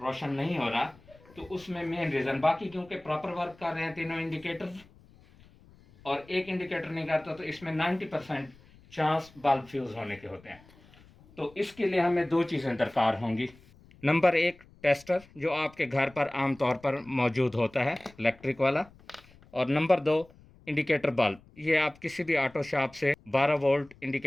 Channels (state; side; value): noise; left; rumble, 26 dB below the sound